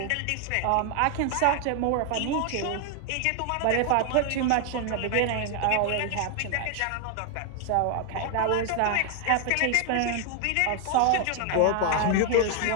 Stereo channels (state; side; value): different; both; correlation 0.00